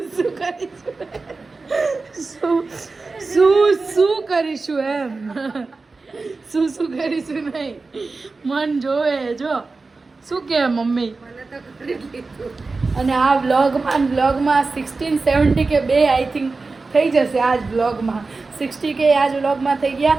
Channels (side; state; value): left; quieter; 3.9 dB